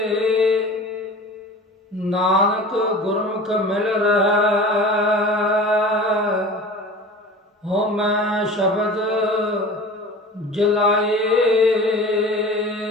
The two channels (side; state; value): both; normal; correlation 0.38